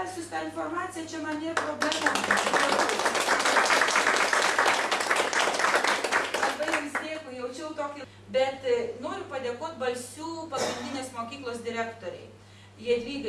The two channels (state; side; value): identical; both; correlation 1.00